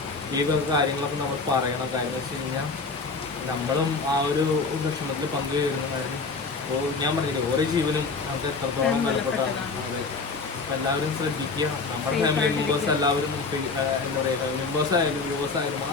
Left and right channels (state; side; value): quieter; right; 4.2 dB